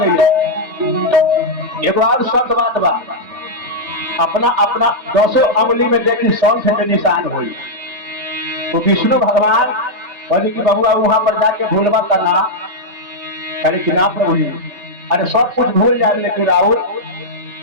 एगो और शब्द बात बा अपना अपना 10 अंगुली में देखी शंख के निशान हुई। तो विष्णु भगवान कहली कि बबुआ वहां पर जाके भूलबा करना करे कि ना प्रभु जी अरे सब कुछ भूल जाए लेकिन राहुल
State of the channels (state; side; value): late; left; 3.3 ms